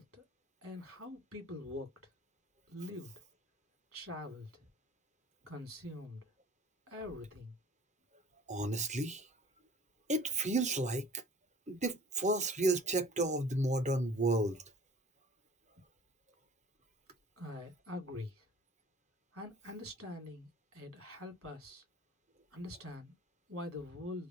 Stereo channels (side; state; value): both; normal; correlation 0.49